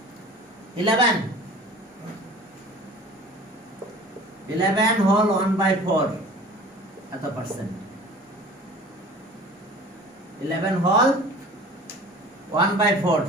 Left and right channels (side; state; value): both; normal; correlation 0.43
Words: 11 হোল 1/4 এত পার্সেন্ট। 11 whole 1/4,